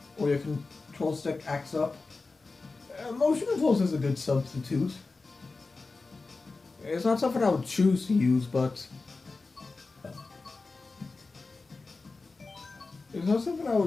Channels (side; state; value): right; quieter; 3.8 dB